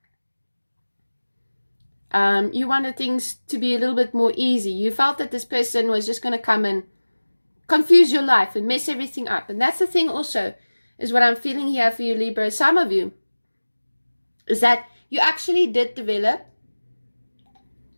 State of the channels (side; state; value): both; inverted; correlation -1.00